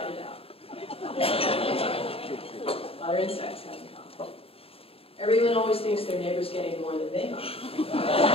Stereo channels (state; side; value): late; right; 0.28 ms